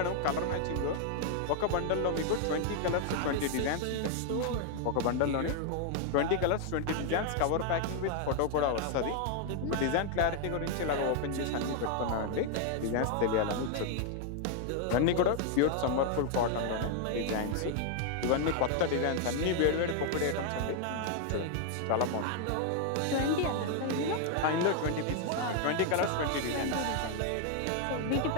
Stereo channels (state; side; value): different; both; correlation 0.00